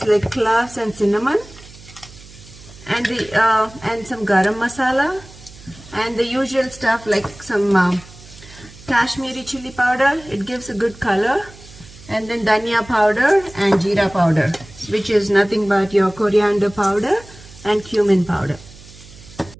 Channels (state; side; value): noise; right; hum, 20 dB below the sound